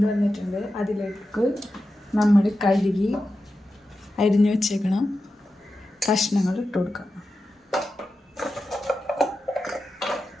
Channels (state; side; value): normal; both; correlation 0.91